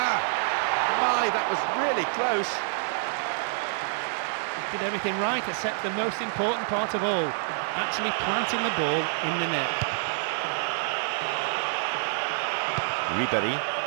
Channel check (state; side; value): silent; left; 56 dB below the other